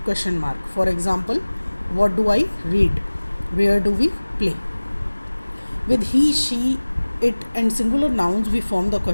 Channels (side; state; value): both; inverted; correlation -1.00